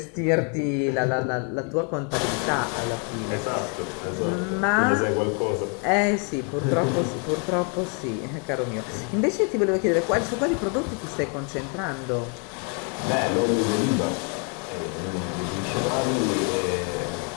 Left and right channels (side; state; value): right; quieter; 37.8 dB